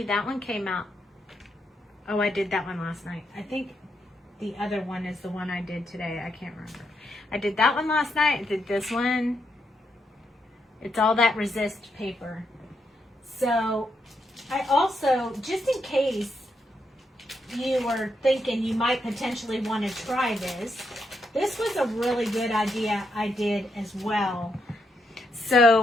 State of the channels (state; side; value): normal; both; correlation 0.80